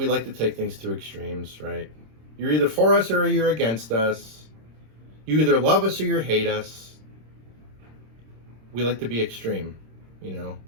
like to take things to extremes, right? You're either for us or you're against us. You either love us or you hate us. We like to be extreme, you know.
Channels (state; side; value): late; left; 26 ms